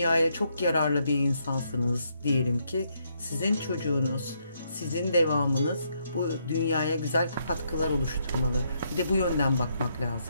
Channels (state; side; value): inverted; both; correlation -0.75